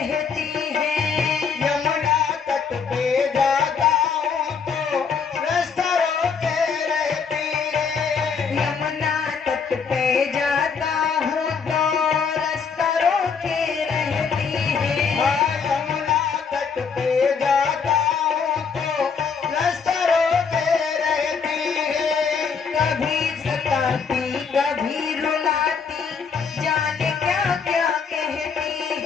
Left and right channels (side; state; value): right; quieter; 5.9 dB